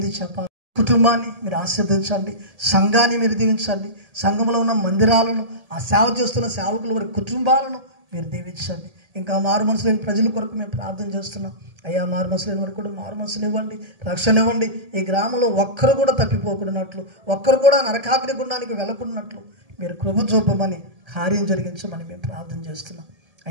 చెప్పాలి? కుటుంబాన్ని మీరు ఆశీర్వదించండి, సంఘాన్ని మీరు దీవించండి, సంఘంలో ఉన్న మందిరాలను, ఆ సేవ చేస్తున్న సేవకుల వారి కుటుంబాలను మీరు దీవించండి. ఇంకా మారు మనసు లేని ప్రజల కొరకు మేము ప్రార్థన చేస్తున్నాం. అయ్యా, మారు మనసు లేని వారికి కూడా మారు మనసుని ఇవ్వండి, రక్షణ ఇవ్వండి. ఈ గ్రామంలో ఒక్కరు కూడా తప్పిపోకున్నట్లు, ఒక్కరు కూడా నరకాగ్ని గుండానికి వెళ్ళకున్నట్లు మీరు కృప చూపమని, కార్యం జరిగించమని మేము ప్రార్థన చేస్తున్నాం.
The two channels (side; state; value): left; late; 1.7 ms